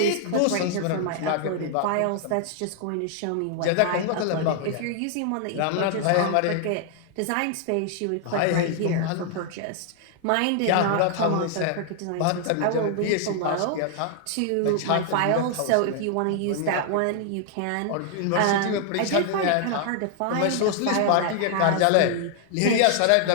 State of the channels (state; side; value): different; both; correlation 0.00